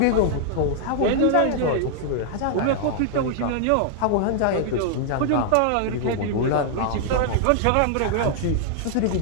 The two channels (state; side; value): different; both; correlation -0.01